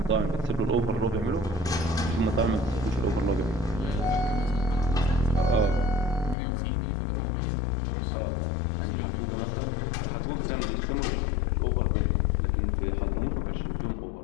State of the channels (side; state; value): right; drops out; at 6.4 s